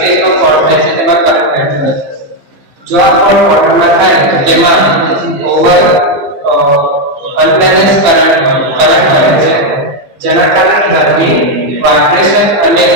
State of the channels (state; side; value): late; left; 15 ms